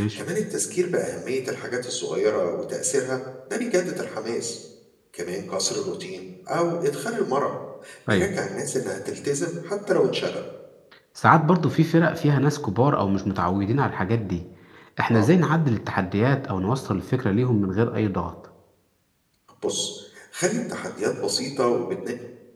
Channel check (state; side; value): identical; both; correlation 1.00